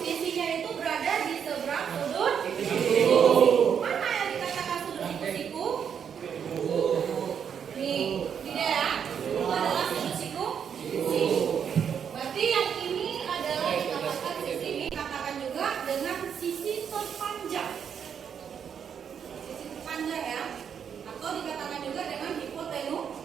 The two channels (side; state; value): left; quieter; 7.7 dB